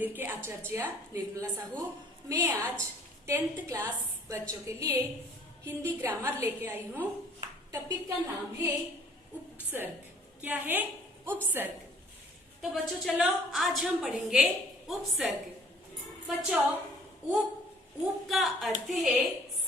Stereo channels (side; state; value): both; normal; correlation 0.56